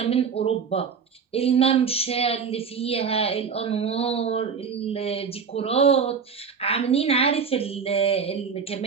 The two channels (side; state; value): left; quieter; 6.1 dB